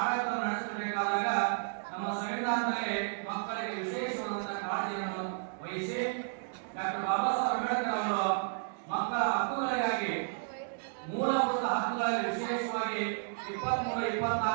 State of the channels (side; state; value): left; silent; digital silence